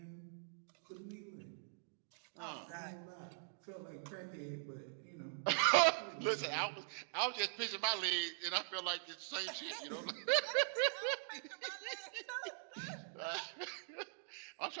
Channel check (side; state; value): left; silent; digital silence